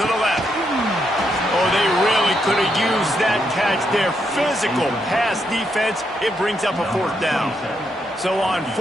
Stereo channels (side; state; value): both; normal; correlation 0.79